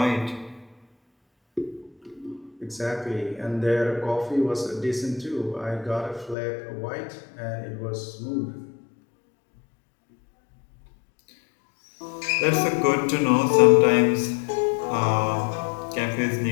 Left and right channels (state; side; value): drops out; right; at 6.4 s